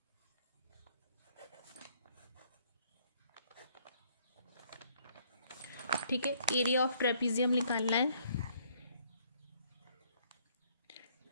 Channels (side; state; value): both; inverted; correlation -0.66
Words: ठीक है, एरिया ऑफ ट्रेपेजियम निकालना है।